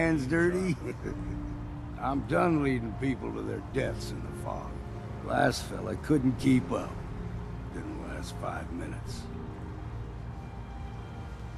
dirty? I'm done leading people to their deaths in the fog. Last fella couldn't keep up. Didn't last 5 minutes.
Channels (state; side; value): identical; both; correlation 1.00